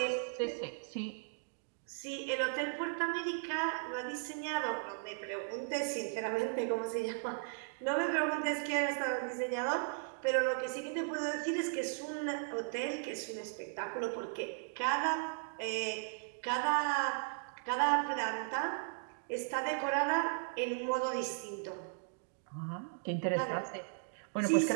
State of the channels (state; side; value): silent; left; digital silence